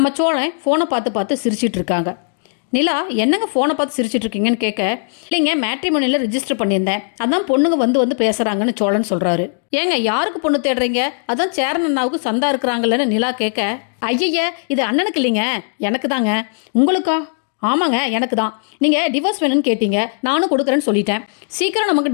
சோழன் ஃபோனை பார்த்து பார்த்து சிரிச்சிட்டு இருக்காங்க. நிலா என்னங்க ஃபோனை பார்த்து சிரிச்சிட்டு இருக்கீங்கன்னு கேட்க, இல்லைங்க மேட்ரிமோனியில் ரிஜிஸ்டர் பண்ணியிருந்தேன், அதான் பொண்ணுங்க வந்து பேசுகிறாங்கன்னு சோழன் சொல்கிறாரு. ஏங்க யாருக்கு பொண்ணு தேடுறீங்க? அதான் சேரன் அண்ணாவுக்கு சந்தா இருக்கிறாங்கல்லன்னு நிலா கேட்க, ஐயய்ய இது அண்ணனுக்கு இல்லைங்க, எனக்கு தாங்க. உங்களுக்கா? ஆமாங்க எனக்கு தான். நீங்கள் டிவோர்ஸ் வேணும்னு கேட்டீங்க, நானும் கொடுக்குறேன்னு சொல்லிட்டேன். சீக்கிரம்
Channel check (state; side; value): silent; right; digital silence